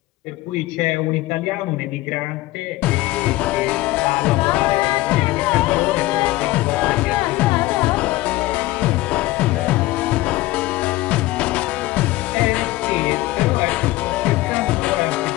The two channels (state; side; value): quieter; right; 18.1 dB